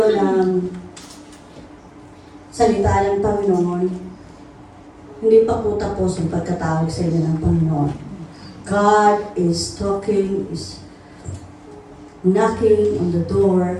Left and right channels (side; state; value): both; identical; correlation 1.00